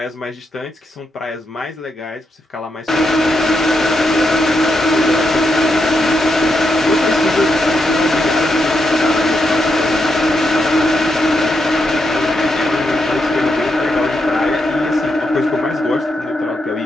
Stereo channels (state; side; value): normal; both; correlation 0.82